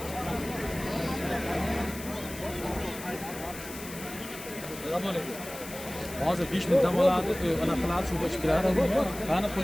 Hozir 5 ming dam oladi, anaqa qiladi, suvga ichib kiradi. Qani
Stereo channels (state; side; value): noise; left; hiss, 13 dB below the sound